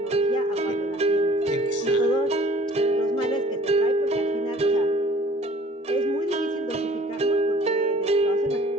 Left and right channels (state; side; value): normal; both; correlation 0.52